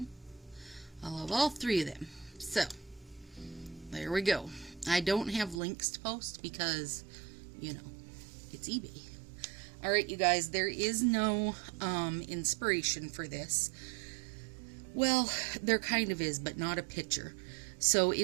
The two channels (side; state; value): left; drops out; at 5.6 s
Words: I love all three of them. So, there we go. I don't have links to post because, you know, it's eBay. Alright, you guys, there is no inspiration for this. Well, there kind of is, but not a picture. So